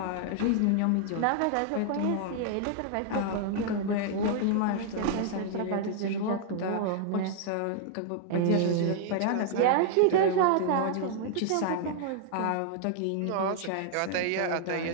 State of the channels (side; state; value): both; different; correlation -0.01